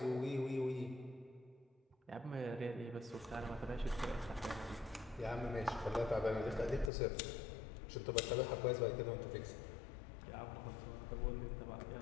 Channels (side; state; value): right; drops out; at 6.9 s